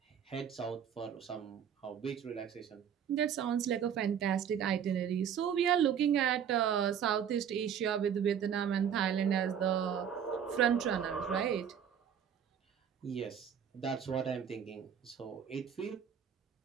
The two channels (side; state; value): left; quieter; 8.4 dB